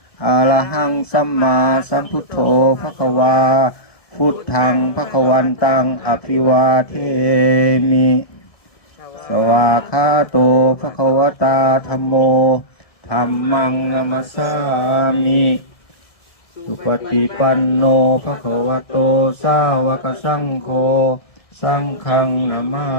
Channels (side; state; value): right; late; 1.7 ms